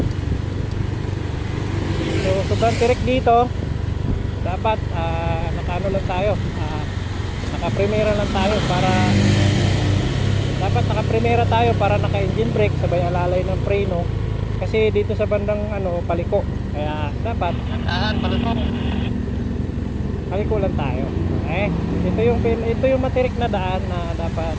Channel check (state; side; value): identical; both; correlation 1.00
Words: So sobrang tirik dito, dapat nakaano lang tayo, naka-primera lang tayo para naka-primera tayo para naka-engine brake sabay alalay ng preno, kasi dito sa bandang paliko, kaya dapat paliko lang tayo. Okay? Ito yung matirik na daan na dapat